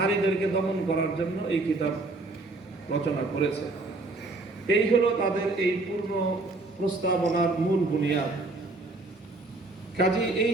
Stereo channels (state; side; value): quieter; left; 3.1 dB